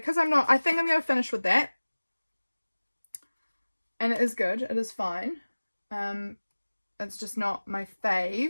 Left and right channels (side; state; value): both; inverted; correlation -1.00